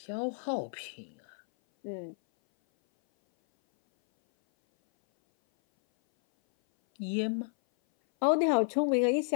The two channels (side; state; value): right; silent; 57 dB below the other